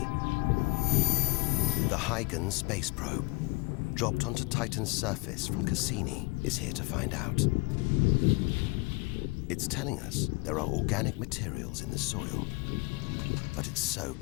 The Huygens space probe, dropped onto Titan's surface from Cassini, is here to find out. It's telling us there are organic materials in the soil, but it's so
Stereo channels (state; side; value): quieter; right; 26.8 dB